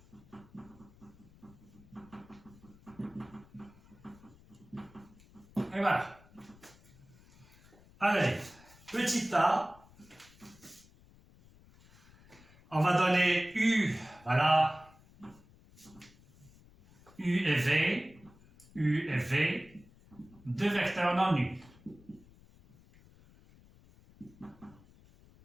Et voilà. Allez, petit a, on va donner U, voilà, U et V, deux vecteurs non nuls.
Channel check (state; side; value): noise; left; rumble, 25 dB below the sound